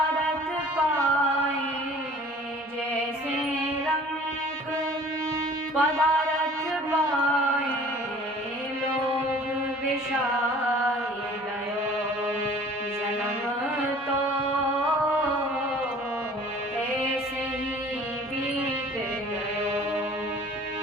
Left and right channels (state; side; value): normal; both; correlation 0.49